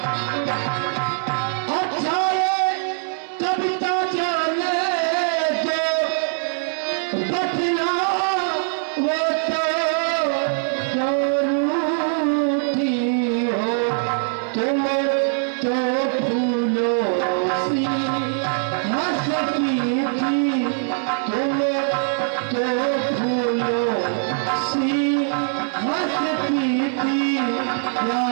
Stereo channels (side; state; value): left; silent; digital silence